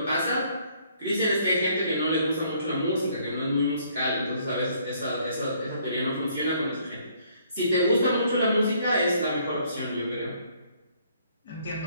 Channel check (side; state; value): both; inverted; correlation -0.64